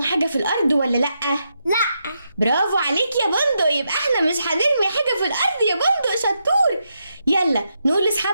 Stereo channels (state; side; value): inverted; both; correlation -0.83